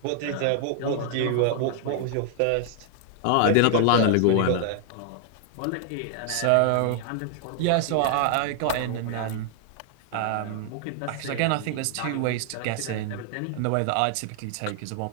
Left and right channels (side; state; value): both; different; correlation 0.00